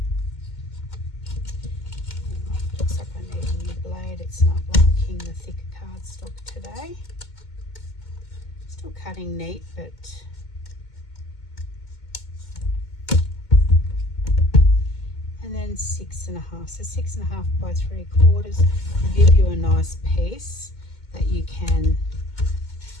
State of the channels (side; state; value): right; late; 2.2 ms